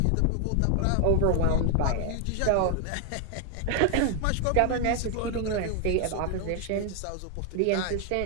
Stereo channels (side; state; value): both; different; correlation 0.00